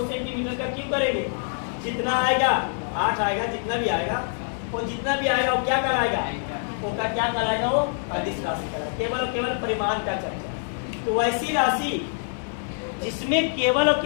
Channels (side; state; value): right; silent; 56 dB below the other